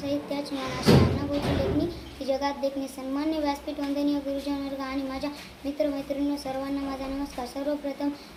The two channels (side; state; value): both; identical; correlation 1.00